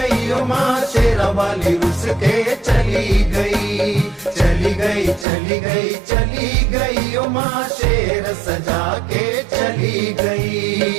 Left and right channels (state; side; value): drops out; left; at 5.2 s